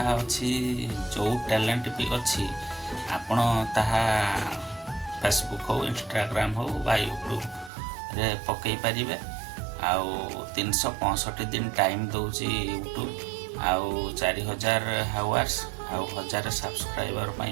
अच्छी जो टैलेंट भी अच्छी आपण ताहा फेसबुक हो, इंस्टाग्राम हो बा यूट्यूब रे पकई पारिबे। आउ 365 दिन टाइम दौची यूट्यूब। आउ 4000 हावर्स आउ 1000 सब्सक्राइबर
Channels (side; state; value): left; drops out; at 7.7 s